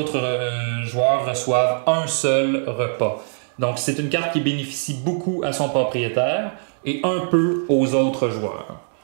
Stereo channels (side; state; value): left; silent; digital silence